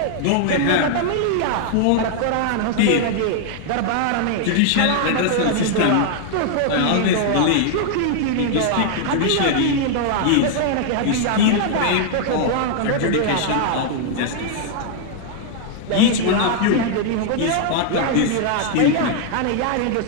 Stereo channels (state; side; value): different; both; correlation 0.00